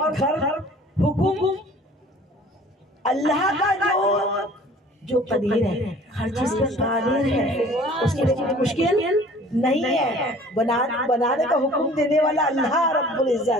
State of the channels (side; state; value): both; normal; correlation 0.49